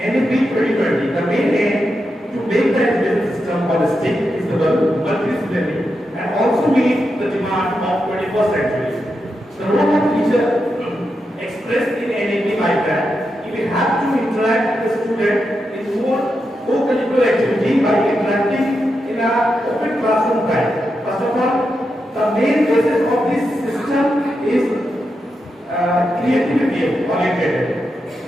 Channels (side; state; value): both; normal; correlation 0.86